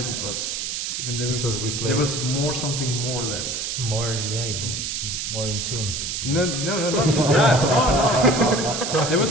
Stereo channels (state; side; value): noise; right; hiss, 3 dB below the sound